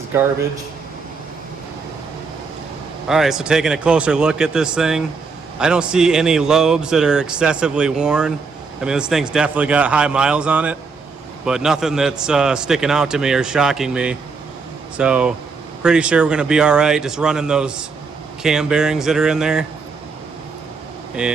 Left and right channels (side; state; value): left; quieter; 4.7 dB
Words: garbage. All right, so taking a closer look at this thing, I don't see any lobes that are excessively worn. I mean, this thing's definitely got high miles on it, but nothing that's sticking out to me or shocking me. So pretty sure we're gonna be all right just running those cam bearings that are in there